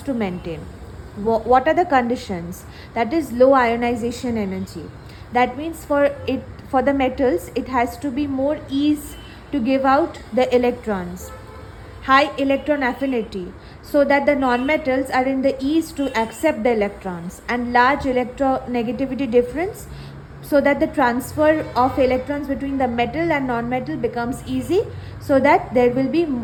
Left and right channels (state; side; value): identical; both; correlation 1.00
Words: to maintain. What are the conditions? That is low ionization energy. That means for the metals, it has to be more ease to give out the electrons. High electron affinity, so that the non-metals are in the ease to accept the electrons, and large electronegativity difference so that the transfer of electrons between the metal and non-metal becomes easy, so that there will be